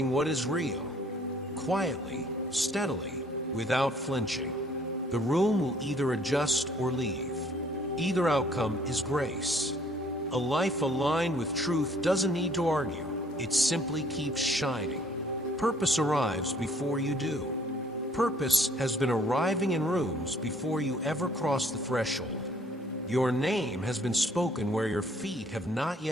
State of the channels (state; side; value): normal; both; correlation 0.60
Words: what is real, quietly, steadily, without flinching. The room will either adjust or leave. Either outcome is grace. A life aligned with truth doesn't need to argue. It simply keeps shining. Purpose arrives before you do. Purpose has been arriving in rooms before you ever cross the threshold. Your name has been spoken where your feet have not